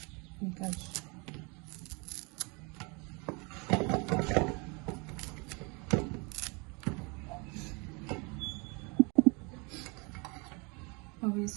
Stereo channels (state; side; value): quieter; left; 30.1 dB